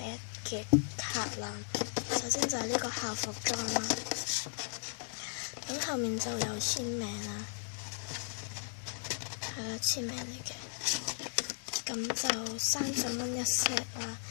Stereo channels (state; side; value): silent; right; digital silence